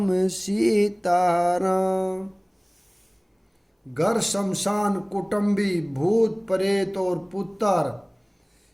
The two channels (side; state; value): both; identical; correlation 1.00